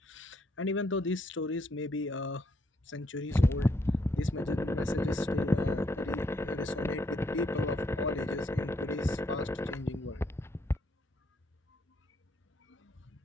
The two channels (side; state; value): both; normal; correlation 0.74